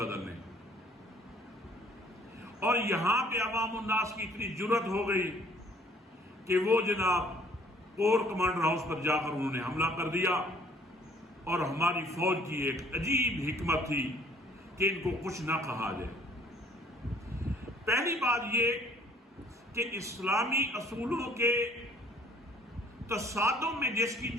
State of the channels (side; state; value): both; normal; correlation 0.57